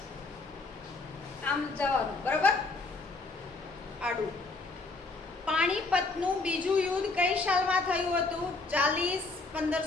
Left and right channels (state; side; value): quieter; right; 3.6 dB